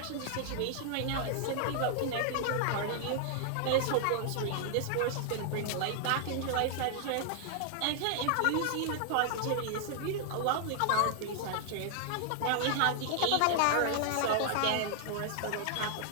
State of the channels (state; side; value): different; both; correlation -0.01